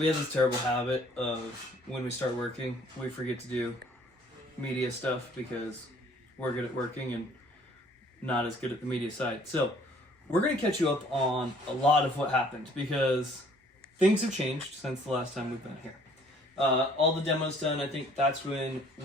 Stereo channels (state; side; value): normal; both; correlation 0.58